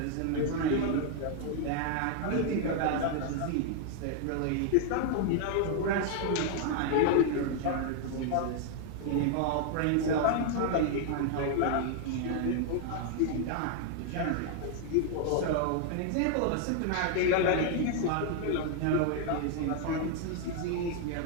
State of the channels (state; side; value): different; both; correlation 0.00